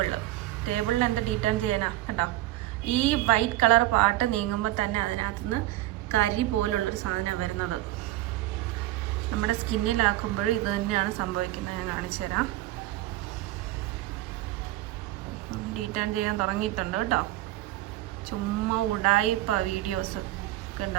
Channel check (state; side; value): quieter; left; 16.1 dB